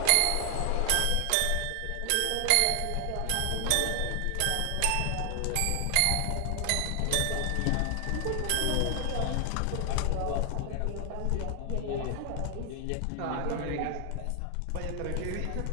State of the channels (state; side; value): different; both; correlation 0.00